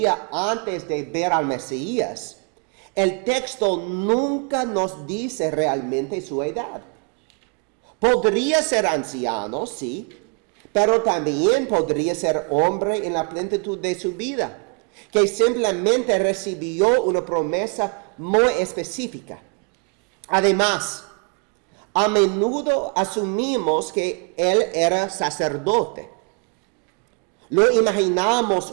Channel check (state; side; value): quieter; left; 36.8 dB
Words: antes de ver al Mesías, el texto nunca nos dice realmente su edad. Podría ser anciano, sí, pero también podría ser hombre en la plenitud de su vida, que simplemente recibió una promesa muy específica. Además, a menudo asumimos que él era sacerdote. Lo imaginamos